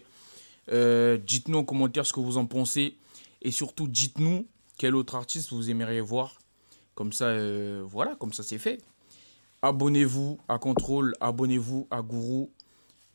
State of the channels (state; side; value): inverted; both; correlation -0.99